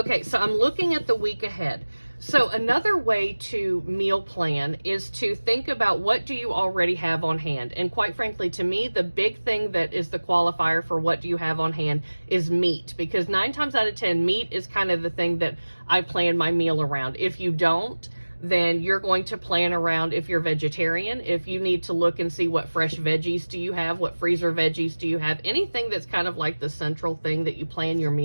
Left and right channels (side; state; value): both; inverted; correlation -1.00